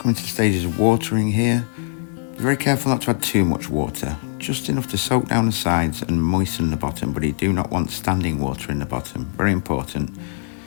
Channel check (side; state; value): right; silent; digital silence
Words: Stages of watering here. Be very careful not to add too much water, just enough to soak down the sides and moisten the bottom, but you do not want standing water in the bottom. Very important.